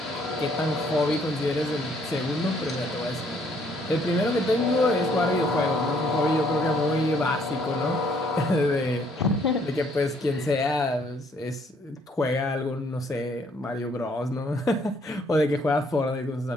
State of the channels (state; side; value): normal; both; correlation 0.66